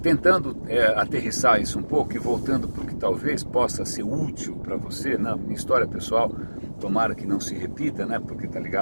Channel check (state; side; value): inverted; both; correlation -1.00